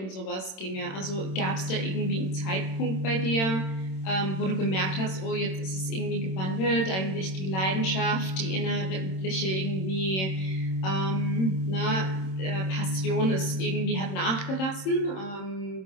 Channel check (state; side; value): late; right; 26 ms